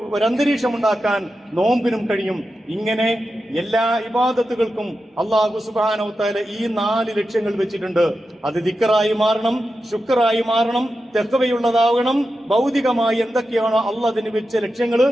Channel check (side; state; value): both; normal; correlation 0.90